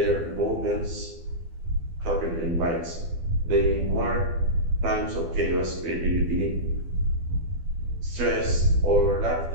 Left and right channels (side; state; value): left; late; 12 ms